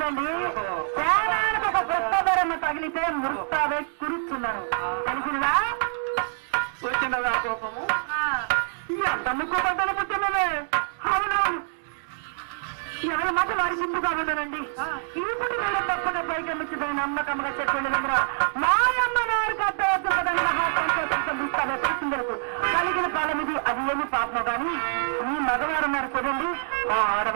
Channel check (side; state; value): left; silent; digital silence